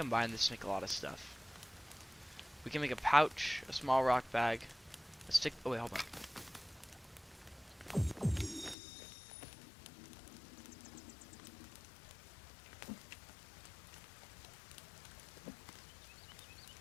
this to make a lot of stuff. We can make a pouch, a small rock bag, a stick. Oh wait, hold on.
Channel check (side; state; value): right; drops out; at 8.8 s